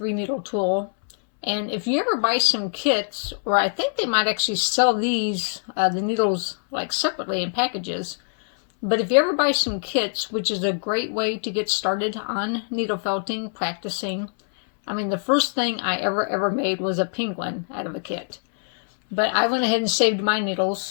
tool, and if you ever buy some kits, or I think they might actually sell these, the needles like separately in packages, but if you ever buy some kits, which is a great way to get started on needle felting, practicing. I mean, the first thing I ever made was a penguin out of a kit. But I went ahead and saved my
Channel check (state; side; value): silent; right; 63 dB below the other